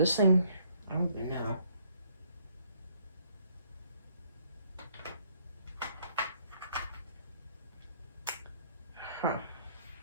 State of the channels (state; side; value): inverted; both; correlation -0.65